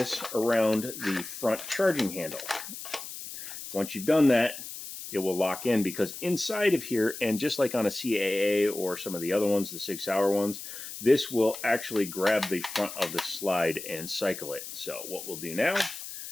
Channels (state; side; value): noise; left; hiss, 10 dB below the sound